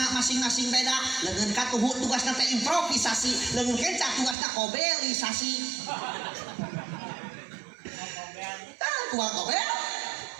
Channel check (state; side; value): drops out; left; at 4.4 s